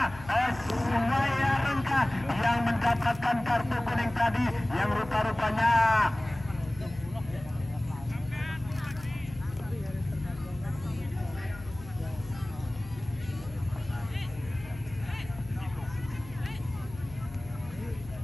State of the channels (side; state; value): left; noise; hum, 16 dB below the sound